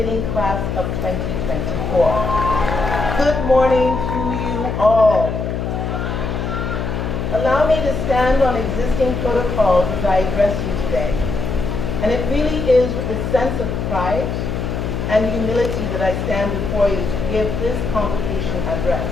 class of 2024. Good morning to you all. Allow me to stand on existing protocols as I address you today. And it really is with a sense of pride and humility that I stand before you to give this convocation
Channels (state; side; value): noise; left; hum, 3 dB below the sound